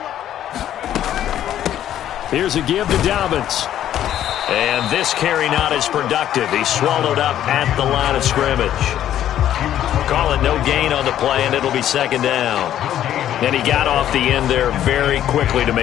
Here's a give to Dobbins. And this carry not as productive. He's swallowed up at the line of scrimmage. Call it no gain on the play, and it'll be 2nd down. And he got off the end there very quickly to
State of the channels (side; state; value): right; quieter; 11.4 dB